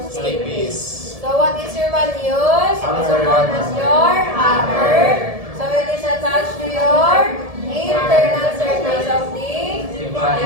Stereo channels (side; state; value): left; late; 1.7 ms